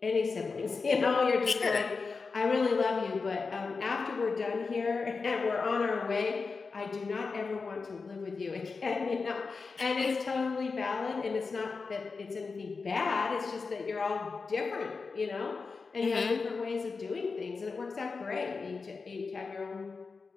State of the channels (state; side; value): quieter; right; 4.6 dB